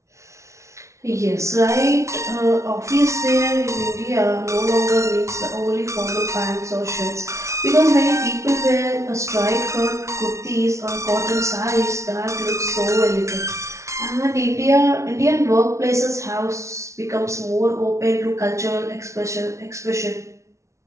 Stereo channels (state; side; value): late; left; 0.14 ms